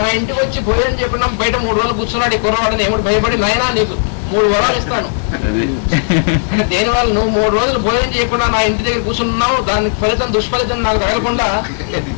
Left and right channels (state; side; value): silent; right; digital silence